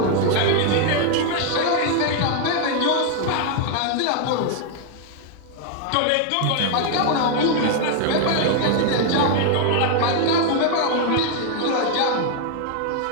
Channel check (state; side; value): different; both; correlation 0.00